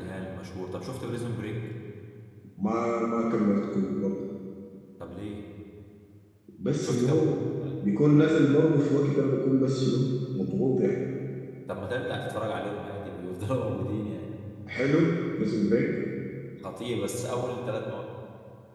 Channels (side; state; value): both; identical; correlation 1.00